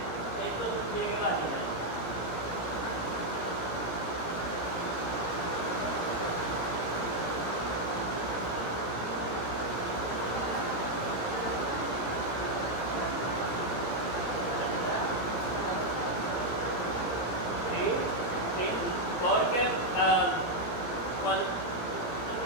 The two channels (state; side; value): late; right; 17 ms